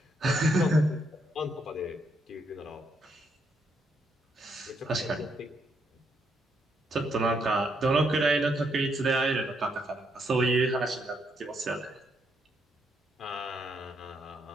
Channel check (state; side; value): normal; both; correlation 0.76